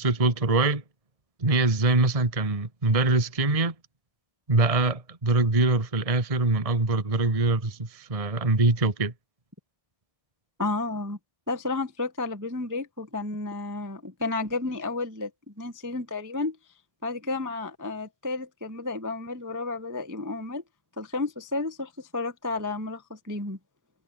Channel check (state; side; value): late; left; 1.6 ms